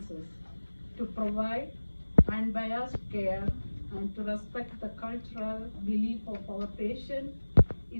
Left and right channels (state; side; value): inverted; both; correlation -1.00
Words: to provide unbiased care, and to respect the cultural belief of our patient